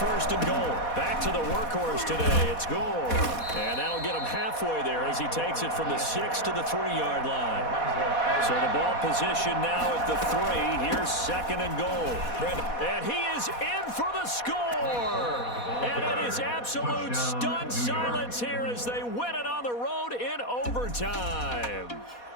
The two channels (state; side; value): late; right; 4.2 ms